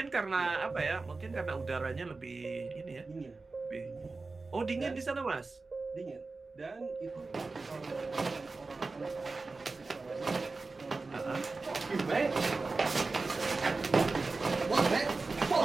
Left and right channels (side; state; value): left; quieter; 3.8 dB